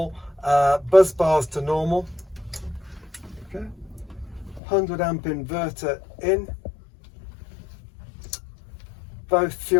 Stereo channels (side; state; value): right; drops out; at 4.6 s